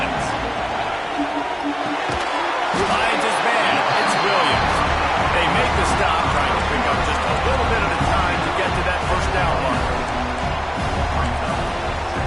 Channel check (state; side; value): identical; both; correlation 1.00